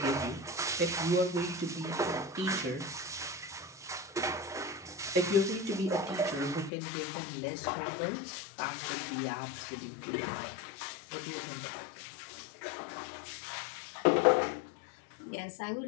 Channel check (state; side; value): drops out; right; at 6.7 s